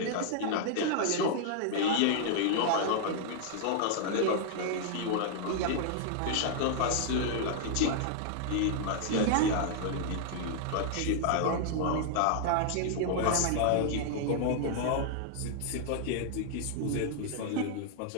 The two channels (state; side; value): different; both; correlation -0.01